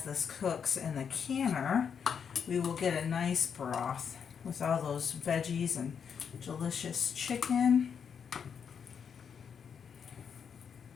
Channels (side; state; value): right; quieter; 7.1 dB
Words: this cooks in the canner, we will get a nice broth with all those veggies and delicious chicken.